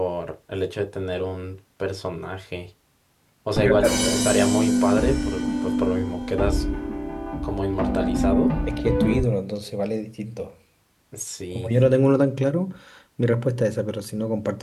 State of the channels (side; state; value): both; identical; correlation 1.00